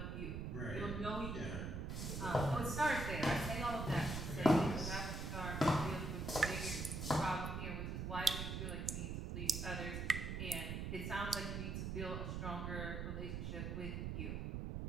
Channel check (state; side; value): noise; right; rumble, 3 dB below the sound